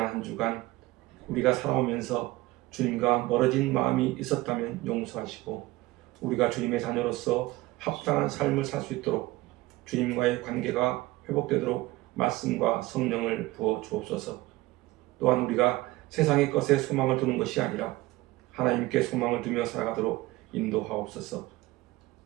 한 주간 우리가 살아오면서 주님과 멀어진 마음이 있었다면 용서하시고 우리가 주님의 자녀로서 합당한 삶을 살 수 있도록 주님과의 관계가 회복되도록 말씀과 성령을 부어 주옵소서. 또한 우리가 세상의 것에 소망을 두는 것이 아니라 하나님께 소망을 두며 살아가도록 인도하옵소서.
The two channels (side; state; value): left; quieter; 19.1 dB